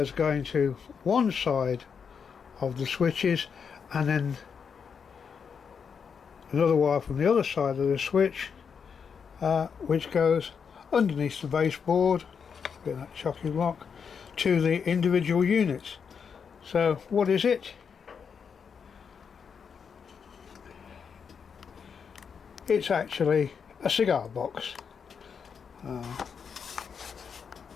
going to one side of the switches, and then another wire from the other side of the switch which goes underneath the baseboard, that chocolate block, to the individual units. So what is it? It's actually a cigar box.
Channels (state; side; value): quieter; right; 6.5 dB